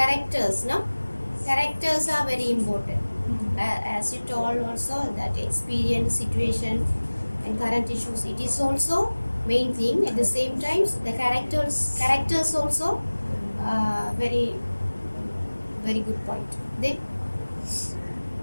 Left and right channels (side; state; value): both; inverted; correlation -1.00